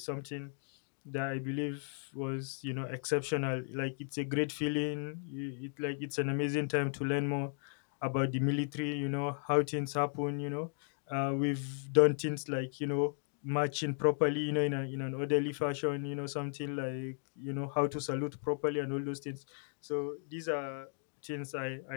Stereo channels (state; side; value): silent; right; 54 dB below the other